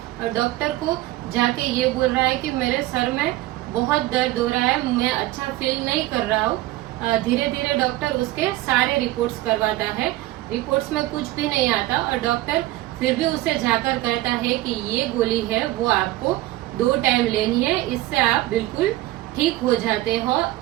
डॉक्टर को जाके ये बोल रहा है कि मेरे सर में बहुत दर्द हो रहा है, मैं अच्छा फील नहीं कर रहा हूँ। धीरे धीरे डॉक्टर उसके सारे रिपोर्ट्स करवाता है, रिपोर्ट्स में कुछ भी नहीं आता, और डॉक्टर फिर भी उसे जाकर कहता है कि ये गोली है वो आपको 2 टाइम लेनी है, इससे आप बिल्कुल ठीक हो जाते हो।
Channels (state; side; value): quieter; left; 17.1 dB